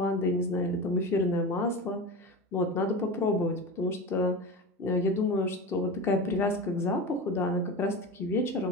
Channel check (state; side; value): normal; both; correlation 0.27